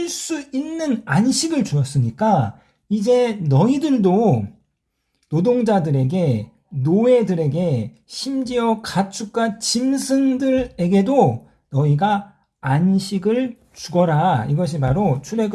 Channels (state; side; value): identical; both; correlation 1.00